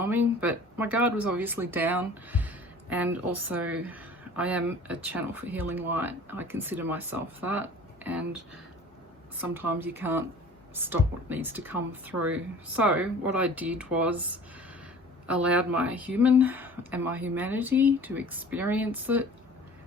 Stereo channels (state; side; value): normal; both; correlation 0.45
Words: But my guard was obviously down, and also I am a channel for healing light. I consider myself that, and sometimes you can't stop what needs to come through. So what I did was allowed my human and my humanity to experience it,